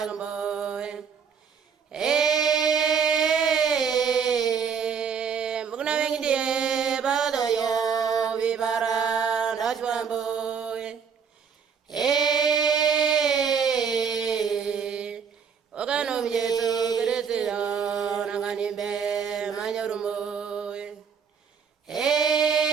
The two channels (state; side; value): quieter; left; 6.6 dB